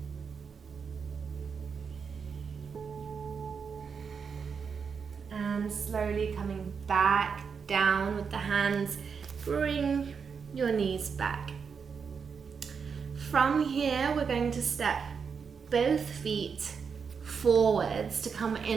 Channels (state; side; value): quieter; left; 6.0 dB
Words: And slowly coming back down with the hands, bring your knees back. From here, we're going to step both feet forwards to come